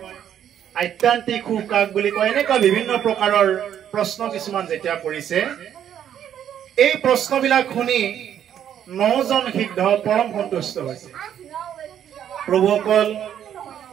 আধ্যাত্মিক সুখ কাক বুলি কয় এনেকুৱা বিভিন্ন প্ৰকাৰৰ প্ৰশ্ন কিছুমান যেতিয়া কৰিছে এই প্ৰশ্নবিলাক শুনি 9 জন সিদ্ধ পৰম সন্তুষ্ট হৈছে প্ৰভুসকল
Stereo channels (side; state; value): left; quieter; 9.8 dB